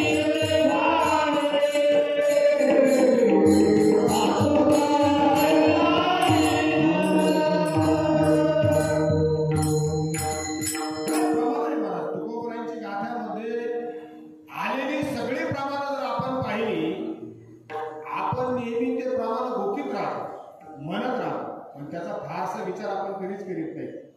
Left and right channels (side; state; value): both; identical; correlation 1.00